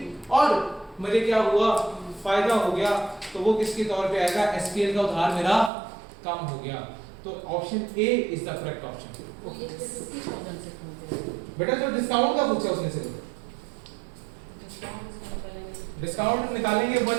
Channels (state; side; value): drops out; left; at 5.7 s